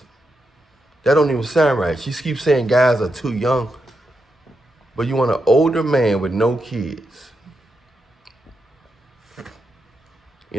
That don't even sound right. She keeps saying guys are too young. But you want an older man with no kids.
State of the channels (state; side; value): normal; both; correlation 0.85